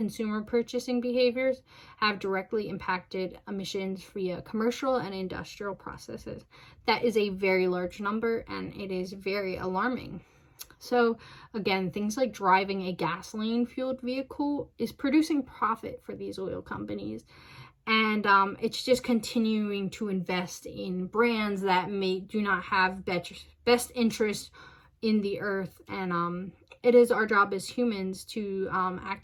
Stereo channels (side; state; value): both; identical; correlation 1.00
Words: purchasing behaviors have directly impacted emissions via commercial and industrial processes. That is a very large number, and it is very alarming. So again, things like driving a gasoline-fueled vehicle is producing profit for these oil companies. And it's just continuing to invest in brands that do not have best interest in the earth. And it is our job as humans to